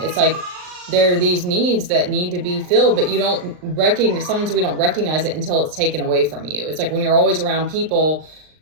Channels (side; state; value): left; late; 39 ms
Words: like, there are these needs that need to be filled, but sometimes we don't recognize it until it's taken away from you. It's like, when you're always around people,